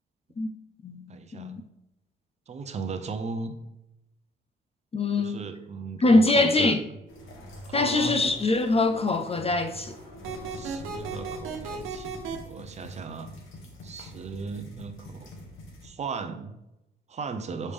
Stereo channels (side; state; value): both; normal; correlation 0.61